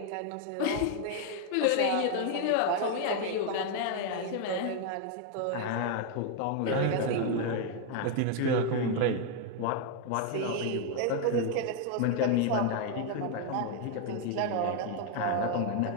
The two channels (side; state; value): both; different; correlation 0.01